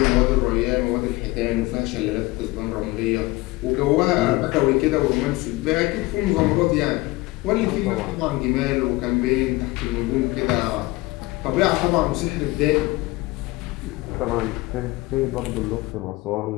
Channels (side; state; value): right; quieter; 21.1 dB